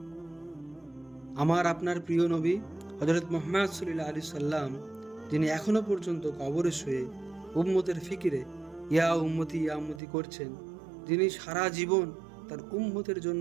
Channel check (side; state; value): left; drops out; at 10.0 s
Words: আমার আপনার প্রিয় নবী হযরত মুহাম্মদ সাল্লাল্লাহু আলাইহি সাল্লাম, যিনি এখনো পর্যন্ত কবরে শুয়ে উম্মতের ফিকিরে ইয়া উম্মতি করছেন, যিনি সারা জীবন তার উম্মতের